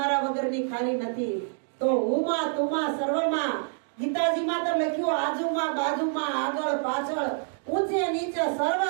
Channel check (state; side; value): silent; left; digital silence